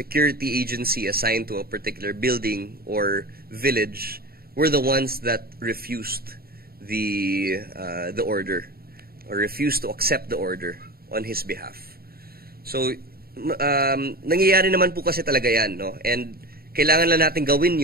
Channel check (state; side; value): late; left; 0.44 ms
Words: agency assigned to a particular building or village were the ones that refused the order or refused to accept the order on his behalf. So, nangyayari naman po kasi talaga yan, no? And kailangan lang natin gawin